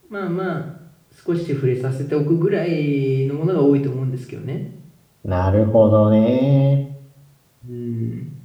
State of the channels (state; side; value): identical; both; correlation 1.00